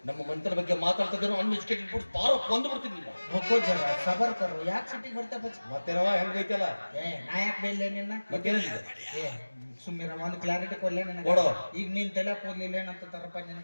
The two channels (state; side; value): inverted; both; correlation -1.00